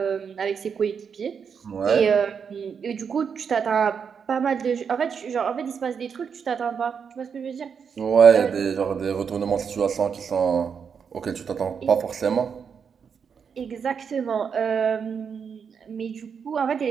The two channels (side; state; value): left; quieter; 6.6 dB